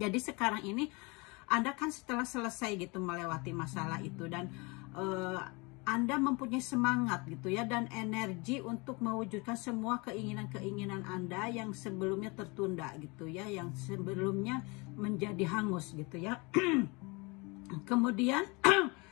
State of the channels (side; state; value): right; quieter; 27.8 dB